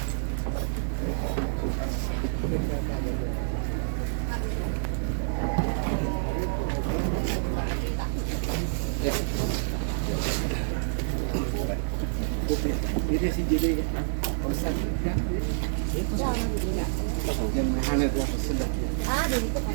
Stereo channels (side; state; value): left; silent; 59 dB below the other